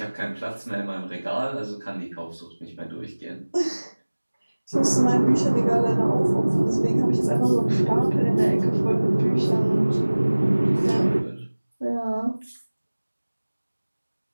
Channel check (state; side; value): inverted; both; correlation -1.00